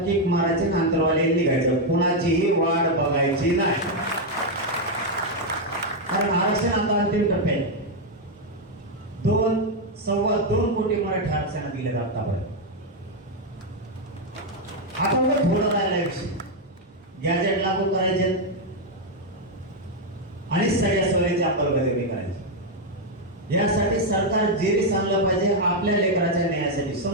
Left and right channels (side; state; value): both; normal; correlation 0.02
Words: मारायची आणि अंतरवाली निघायचं. कुणाचीही वाट बघायची नाही. कारण आरक्षण आता अंतिम टप्प्यात 2.25 कोटी मराठी आरक्षणात दिले जातात. आपण थोडं राहिला विषय गॅजेट लागू करायचे आणि सगळ्या सोयीची अंमलबजावणी करायची. यासाठी सरकार जे सांगलं पाहिजे आपल्या लेकराच्या न्यायासाठी